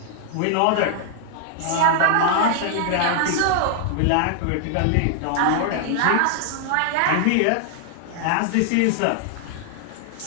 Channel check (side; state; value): both; different; correlation 0.00